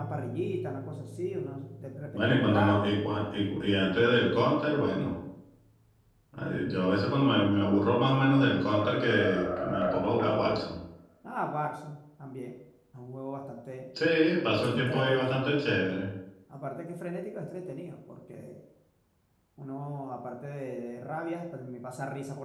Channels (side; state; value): both; identical; correlation 1.00